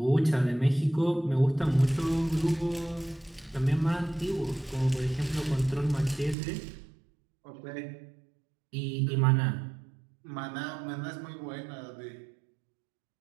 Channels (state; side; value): drops out; left; at 6.4 s